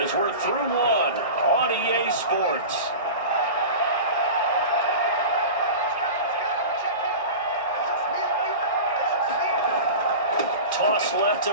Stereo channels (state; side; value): inverted; both; correlation -0.32